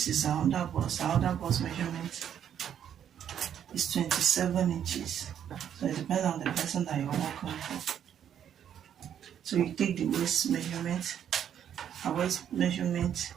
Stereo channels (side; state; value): left; quieter; 9.4 dB